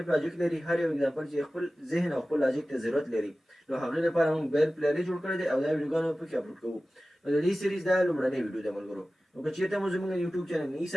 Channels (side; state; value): both; normal; correlation 0.96